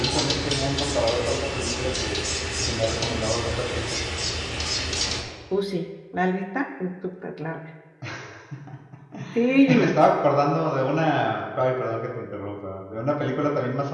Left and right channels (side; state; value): both; identical; correlation 1.00